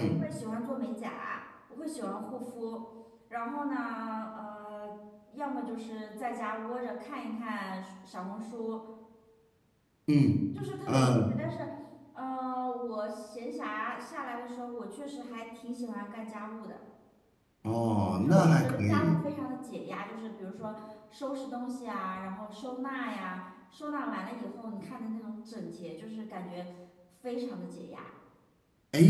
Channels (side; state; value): both; identical; correlation 1.00